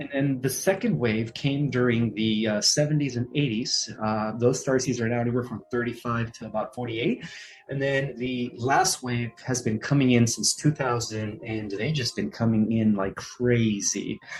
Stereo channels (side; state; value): both; identical; correlation 1.00